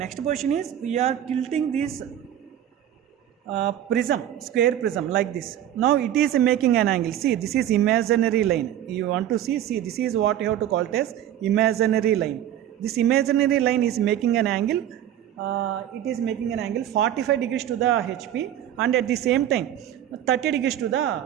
position is we are tilting this prism, square prism like this. Now it is making an angle. See, this is imaginary line. You want to see, this is what you have to call it as imaginary line. This imaginary line is making an angle. It is making an angle 45 degrees to the HP and at the same time 30 degrees to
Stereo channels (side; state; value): left; quieter; 11.3 dB